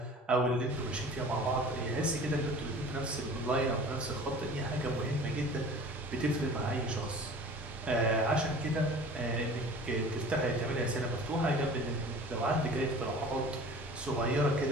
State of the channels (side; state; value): both; normal; correlation 0.43